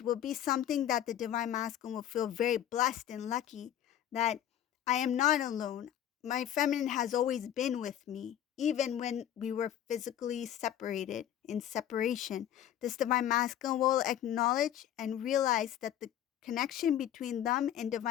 will be something that the divine masculine will feel very blessed and lucky, that I am not alone. My feminine has always been with me, even when we were physically separated, in separation. This divine masculine will acknowledge and realize that the connection between them and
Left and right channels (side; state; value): right; quieter; 11.0 dB